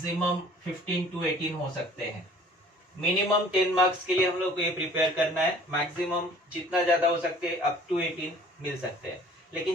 15 to 18 हो सकते हैं। मिनिमम 10 मार्क्स के लिए हम लोग को ये प्रिपेयर करना है, मैक्सिमम जितना ज्यादा हो सकते हैं अप टू 18 मिल सकते हैं। लेकिन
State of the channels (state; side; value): normal; both; correlation 0.51